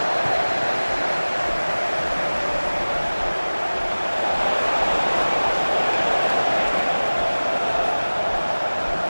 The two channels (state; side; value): inverted; both; correlation -1.00